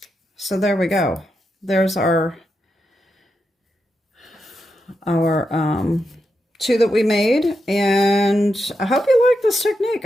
So there we go. There's our two that we made, and I hope you like this technique.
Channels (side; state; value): both; normal; correlation 0.86